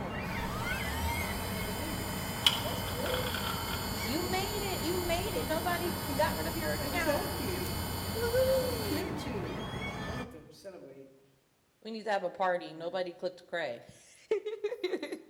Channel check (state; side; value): identical; both; correlation 1.00